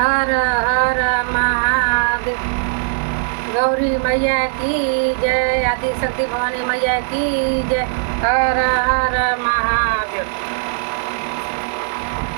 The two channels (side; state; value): left; silent; digital silence